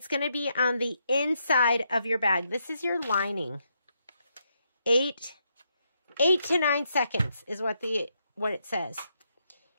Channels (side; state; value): both; inverted; correlation -0.79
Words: going to be on the inside of your bag. This is your lining. 8 to 9 seconds is what it says.